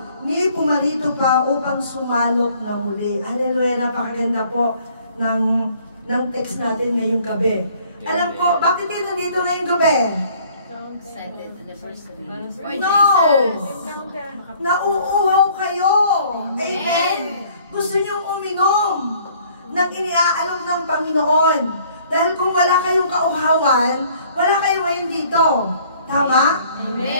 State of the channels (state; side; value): inverted; both; correlation -0.58